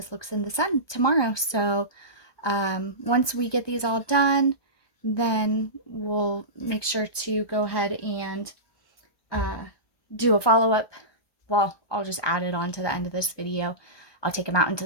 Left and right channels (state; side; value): late; right; 1.2 ms